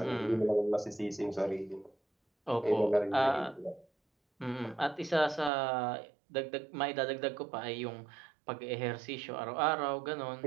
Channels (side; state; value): left; drops out; at 5.5 s